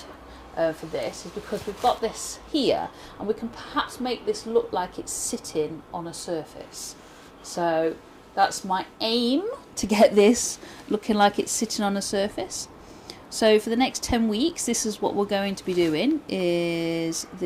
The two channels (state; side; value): identical; both; correlation 1.00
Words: for this is because we've got this here, and we can perhaps make this look like it's sitting on a surface. So that's my aim, to get this looking like it's sitting on a surface. So for the next 10 weeks, this is what we're going to be doing, is